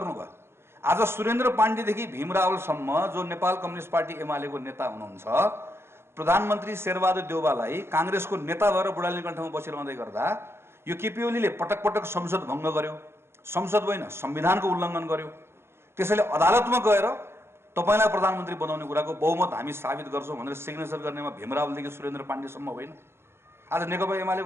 आज सुरेन्द्र पाण्डेदेखि भीम रावलसम्म जो नेपाल कम्युनिस्ट पार्टी एमालेको नेता हुनुहुन्छ, प्रधानमन्त्री शेरबहादुर देउवालाई काङ्ग्रेसको नेता भएर बुढानीकण्ठमा बसिरहँदै गर्दा यो केपी ओलीले पटक पटक संसद भङ्ग गर्यो, संसद होइन संविधानको उल्लङ्घन गर्यो। त्यसैले अदालतमा गएर तपाईँलाई प्रधानमन्त्री बनाउने कुराको बहुमत हामी साबित गर्छौँ भनेर सिग्नेचर गर्नेमा भीम रावलदेखि सुरेन्द्र पाण्डेसम्म होइन। आज नेकपा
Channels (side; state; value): left; late; 0.12 ms